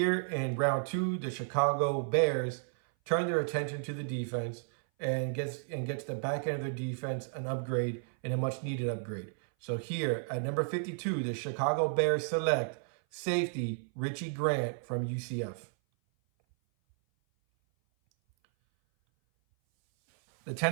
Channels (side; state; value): left; silent; 56 dB below the other